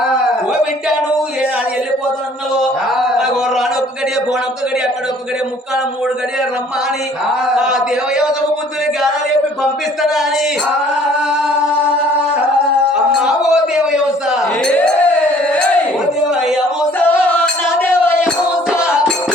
ఓ వింటాను ఏనాడు వెళ్ళిపోతున్నావు నాకు రాను ఒక్క గడియ బోనొక్క గడియ అక్కడ ఒక్క గడియ ముక్కాల 3 గడియ రమ్మ అని ఆ దేవయోగ బుద్ధుని గానాలు చెప్పి పంపిస్తానా అని అమ్మా ఓ దేవయోస ఓ దేవయోస నా దేవయోస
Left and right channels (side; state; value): both; normal; correlation 0.56